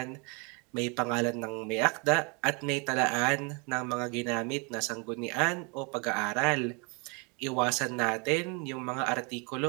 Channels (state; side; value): quieter; left; 32.3 dB